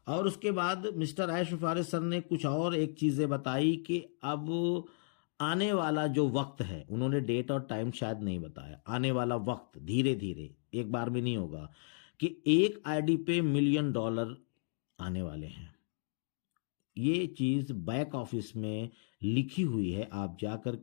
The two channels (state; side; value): silent; right; digital silence